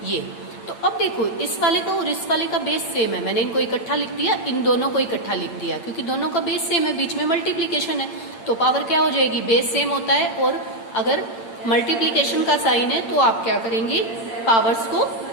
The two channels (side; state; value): right; late; 8.8 ms